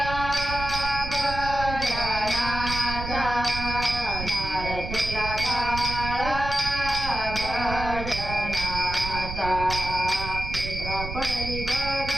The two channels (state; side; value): noise; right; rumble, 7 dB below the sound